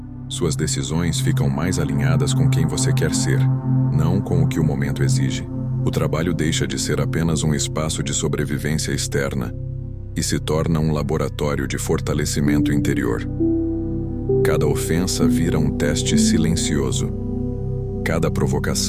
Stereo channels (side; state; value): both; identical; correlation 1.00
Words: Suas decisões ficam mais alinhadas com quem você quer ser, não com o que o momento exige. O trabalho deixa de ser apenas um espaço de sobrevivência externa e se torna um laboratório de fortalecimento interior. Cada ofensa vira um teste silencioso. Cada